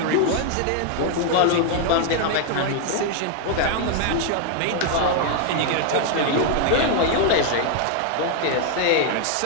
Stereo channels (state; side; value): different; both; correlation 0.00